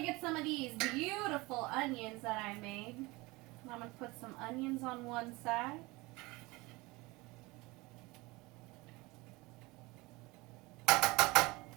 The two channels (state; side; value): quieter; left; 23.1 dB